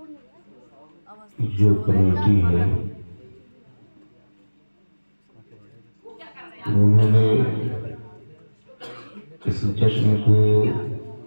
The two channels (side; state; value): both; inverted; correlation -1.00